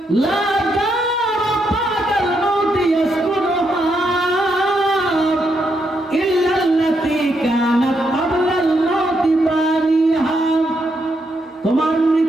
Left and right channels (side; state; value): both; normal; correlation 0.79